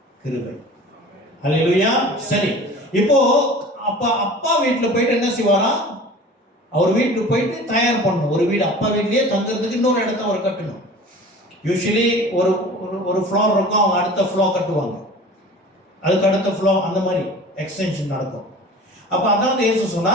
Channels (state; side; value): normal; both; correlation 0.41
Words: கிருபை. அல்லேலூயா. சரி, இப்போ அப்பா வீட்டில் போயிட்டு என்ன செய்வாரா? அவர் வீட்டுக்கு போயிட்டு தயார் பண்ணணும். ஒரு வீடு அப்பா வீட்லயே தங்குறதுக்கு இன்னொரு இடத்த அவர் கட்டணும். யூஸ்வலி ஒரு ஃப்ளோர் இருக்கும், அவங்க அடுத்த ஃப்ளோர் கட்டுவாங்க, அதுக்கு அடுத்த ஃப்ளோர், அந்த மாதிரி எக்ஸ்டென்ஷன் நடக்கும். அப்போ அதாவது இயேசு